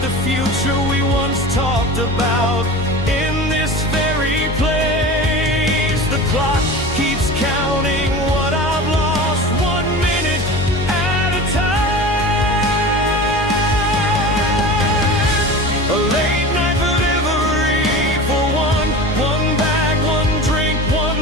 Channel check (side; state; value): both; normal; correlation 0.33